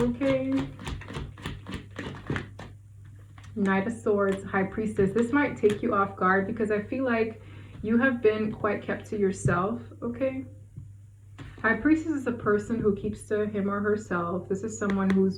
Knight of Swords, High Priestess. This might take you off guard because I feel like you have been quite kept to yourself, okay? High Priestess is a person who keeps to him or herself. This is someone who's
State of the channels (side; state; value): both; identical; correlation 1.00